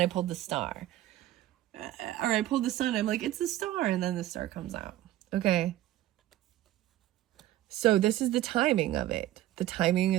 pulled the star. Or I pulled the sun, I'm like, it's the star, and then the star comes out. Okay. So this is the timing of it. The timing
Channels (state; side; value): quieter; left; 14.2 dB